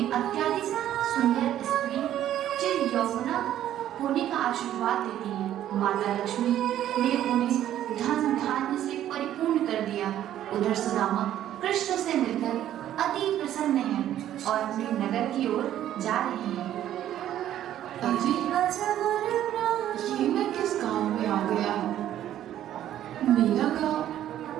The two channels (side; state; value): left; quieter; 11.8 dB